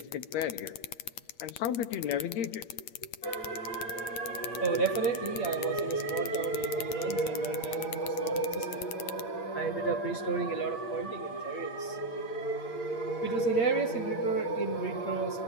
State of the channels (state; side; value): late; right; 8.7 ms